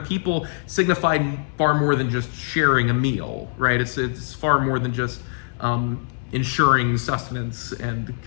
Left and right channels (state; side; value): silent; right; 64 dB below the other